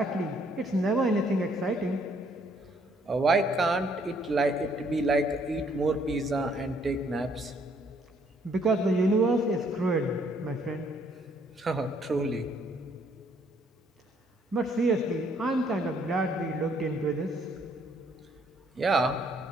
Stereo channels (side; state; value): both; normal; correlation 0.66